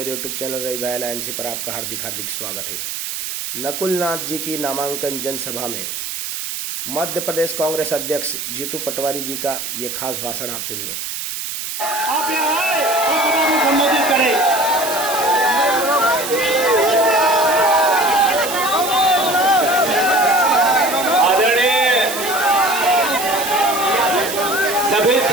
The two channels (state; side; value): noise; right; hiss, 6 dB below the sound